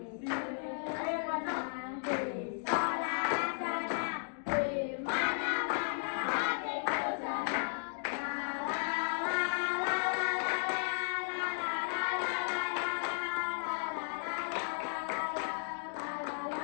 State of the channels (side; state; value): right; silent; digital silence